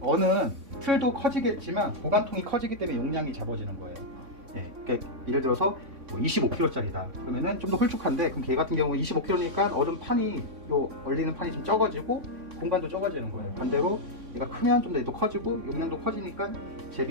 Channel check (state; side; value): late; left; 3.6 ms